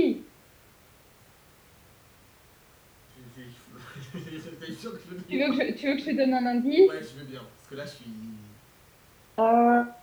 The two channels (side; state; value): both; identical; correlation 1.00